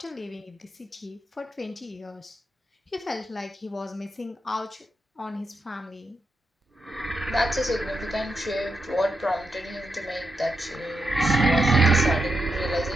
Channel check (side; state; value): both; normal; correlation 0.84